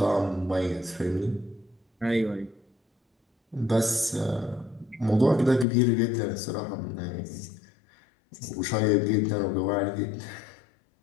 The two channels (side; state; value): right; drops out; at 5.7 s